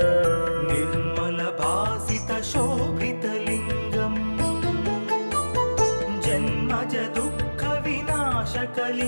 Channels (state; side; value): inverted; both; correlation -1.00